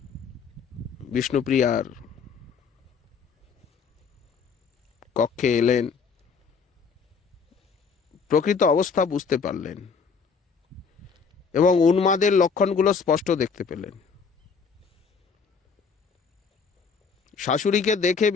বিষ্ণুপ্রিয়ার কক্ষে এলেন। প্রকৃত অবস্থা বুঝতে পারলেন এবং উন্মাদের লক্ষণগুলো স্পষ্ট দেখতে পেলেন। শাশুড়িকে দেখে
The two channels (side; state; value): right; quieter; 5.6 dB